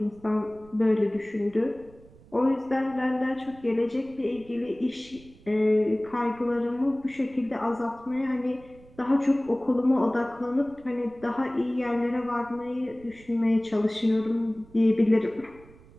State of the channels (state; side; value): noise; right; rumble, 24 dB below the sound